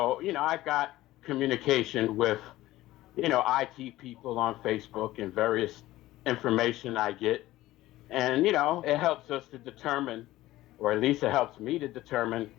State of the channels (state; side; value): quieter; right; 16.4 dB